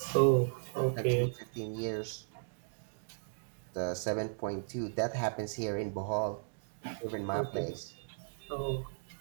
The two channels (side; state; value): left; silent; digital silence